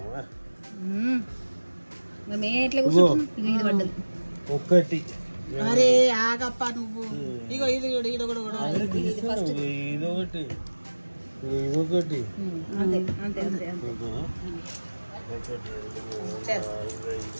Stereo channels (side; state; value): both; inverted; correlation -1.00